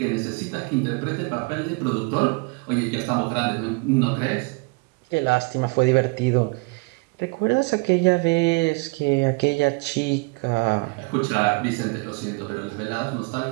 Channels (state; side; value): quieter; left; 29.4 dB